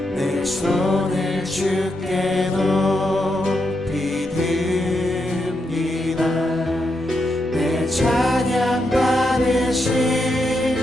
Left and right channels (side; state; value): both; normal; correlation 0.83